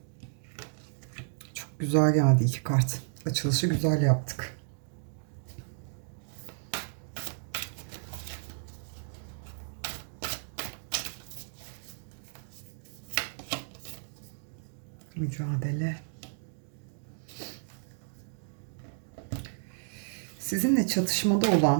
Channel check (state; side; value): silent; left; digital silence